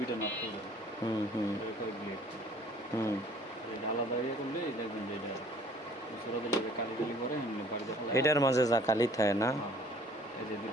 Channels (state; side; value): normal; both; correlation 0.54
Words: নাট করবেন ব্লেড আলাদা ইয়ে করলে দেখবেন যে এটা সুরা দিলে যে কালি কালি করে এমনি বাড়িতে ফেলে এটার মাঝে যা কালি থাকে না। এই যে